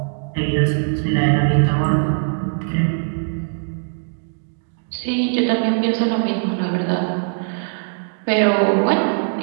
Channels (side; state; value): left; silent; digital silence